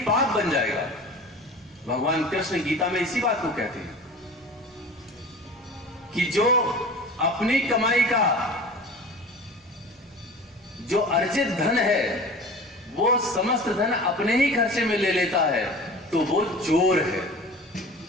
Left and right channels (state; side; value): normal; both; correlation 0.38